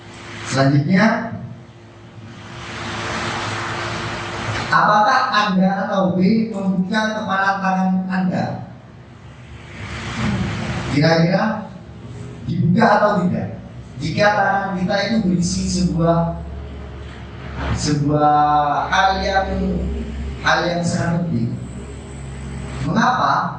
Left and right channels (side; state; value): both; identical; correlation 1.00